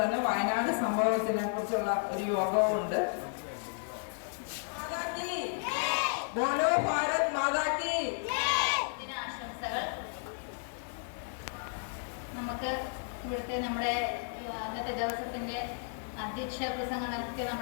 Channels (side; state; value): right; silent; digital silence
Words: തന്നെ വയനാട് സംഭവത്തിനെ കുറിച്ചുള്ള ഒരു യോഗവുമുണ്ട്. ബോലോ ഭാരത് മാതാ കി. നമുക്ക് ഇവിടുത്തെ നമ്മുടെ അന്നത്തെ ദിവസത്തിന്റെ അധ്യക്ഷ പ്രസംഗം നടത്തിയ